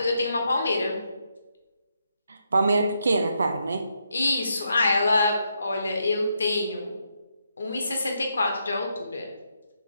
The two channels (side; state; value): both; inverted; correlation -0.80